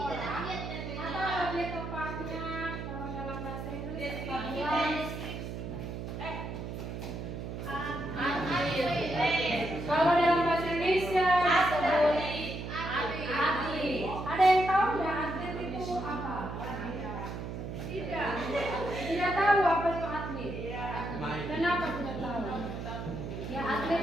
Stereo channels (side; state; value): right; noise; hum, 6 dB below the sound